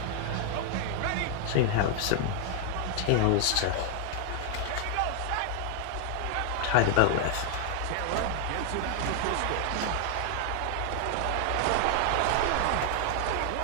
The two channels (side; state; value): both; different; correlation 0.00